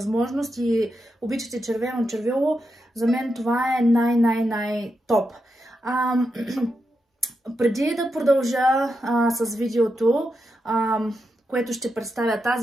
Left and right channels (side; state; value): both; normal; correlation 0.86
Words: и обичате червено червило, за мен това е най-топ. Преди да продължа с видеото, което ще представя